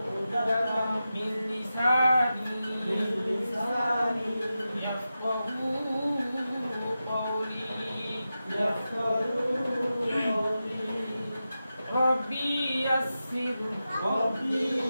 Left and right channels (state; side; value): inverted; both; correlation -0.91